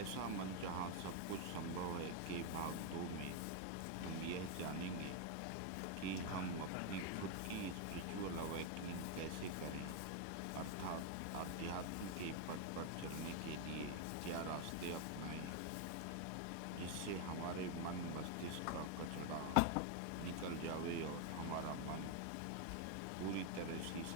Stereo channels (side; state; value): both; different; correlation 0.01